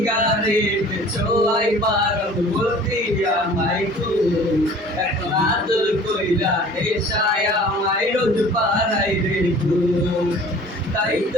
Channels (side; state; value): both; normal; correlation 0.47